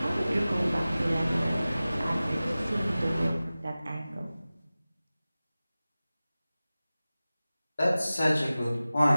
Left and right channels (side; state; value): both; inverted; correlation -0.97